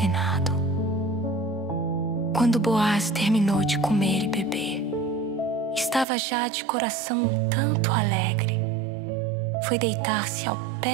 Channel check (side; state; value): left; drops out; at 6.1 s